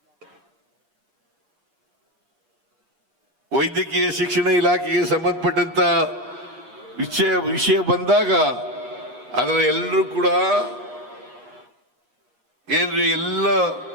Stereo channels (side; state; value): left; late; 8.4 ms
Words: ವೈದ್ಯಕೀಯ ಶಿಕ್ಷಣ ಇಲಾಖೆಗೆ ಸಂಬಂಧಪಟ್ಟಂತ ವಿಷಯ ಬಂದಾಗ ಅದರ ಎಲ್ಲರೂ ಕೂಡ ಏನ್ರಿ ಎಲ್ಲ